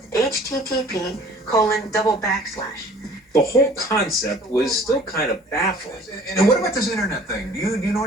http:// the whole concept was still kind of baffling. And what about this internet thing? Do you know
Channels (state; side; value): normal; both; correlation 0.51